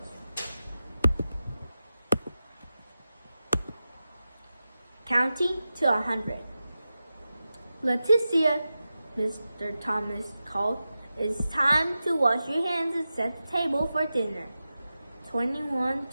Counting to 100. Leticia, Mr. Thomas called, "It's time to wash your hands and set the table for dinner." 21,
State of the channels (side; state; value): both; inverted; correlation -0.93